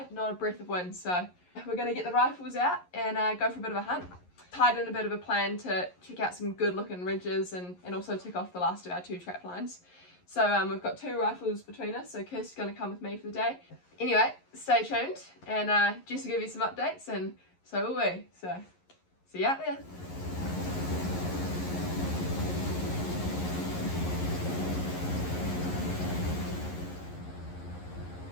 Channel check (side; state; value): right; late; 11 ms